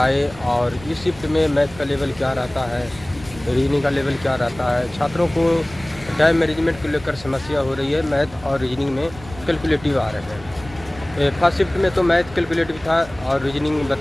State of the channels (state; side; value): noise; right; rumble, 18 dB below the sound